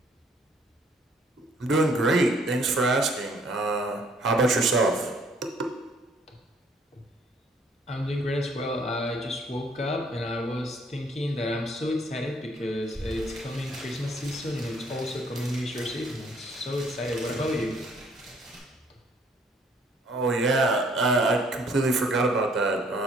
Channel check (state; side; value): normal; both; correlation 0.63